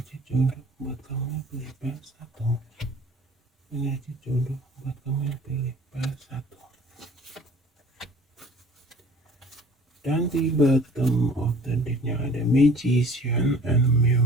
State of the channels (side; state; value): both; normal; correlation 0.49